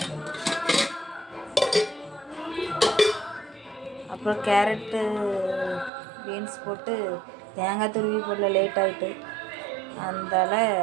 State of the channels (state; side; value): drops out; left; at 5.9 s